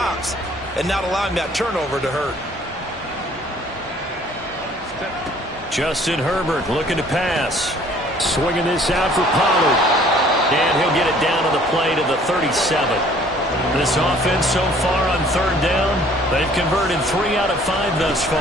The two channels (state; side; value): normal; both; correlation 0.56